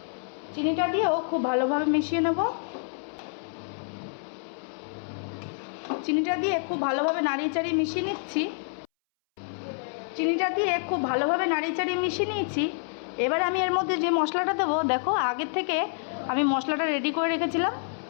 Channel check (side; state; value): right; silent; 60 dB below the other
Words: চিনিটা দিয়েও খুব ভালোভাবে মিশিয়ে নেব। চিনিটা দিয়ে খুব ভালোভাবে নাড়িয়ে চাড়িয়ে মিশিয়ে নিচ্ছি। চিনিটা দিয়ে খুব ভালোভাবে নাড়িয়ে চাড়িয়ে মিশিয়ে নিয়েছি। এবারে আমি এর মধ্যে যে মশলাটা দেবো, দেখো আগের থেকে আমি মশলাটা রেডি করে রেখেছিলাম,